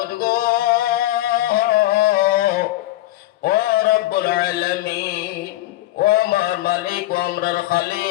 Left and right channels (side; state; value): right; quieter; 16.2 dB